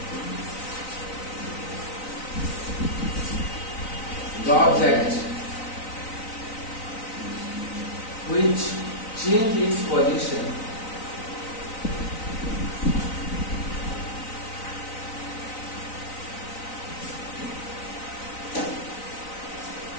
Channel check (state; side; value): late; right; 3.9 ms